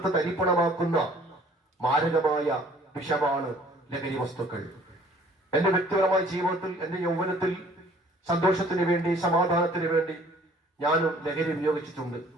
തരിപ്പണമാക്കുന്ന മാരകമായ വിഷമാണ് ലഹരി വസ്തുക്കൾ. എന്റെ വ്യക്തിപരമായ ജീവിതത്തിൽ, എന്റെ യൗവനത്തിൽ സന്തോഷത്തിന് വേണ്ടി, സമാധാനത്തിന് വേണ്ടി ഞാനും ലഹരി ഉപയോഗിച്ചിട്ടുണ്ട്.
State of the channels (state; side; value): normal; both; correlation 0.55